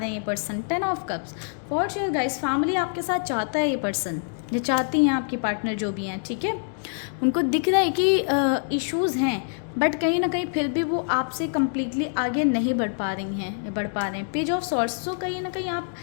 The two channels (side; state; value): right; silent; digital silence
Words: हैं ये person. 10 of cups. For sure guys, family आपके साथ चाहता है ये पर्सन, ये चाहती हैं आपकी पार्टनर जो भी हैं। ठीक है, उनको दिख रहा है कि इश्यूज़ हैं, बट कहीं ना कहीं फिर भी वो आपसे कम्प्लीटली आगे नहीं बढ़ पा रहे हैं। पेज ऑफ सॉर्ट्स, तो कहीं ना कहीं आप